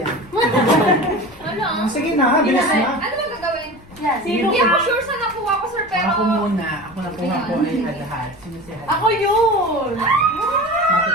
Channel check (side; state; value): left; noise; rumble, 24 dB below the sound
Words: Ano? Sige na, bilis na. Ano ba gagawin? Yan. Hindi ako sure sa nakuha ko, sir, pero... Ako muna. Ako nakuha ko ay lahat. Sino si Hal? Ako yun!